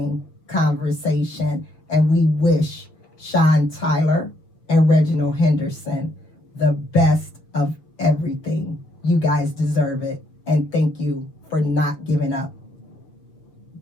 conversation, and we wish Sean Tyler and Reginald Henderson the best of everything. You guys deserve it, and thank you for not giving up.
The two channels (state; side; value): late; right; 6.5 ms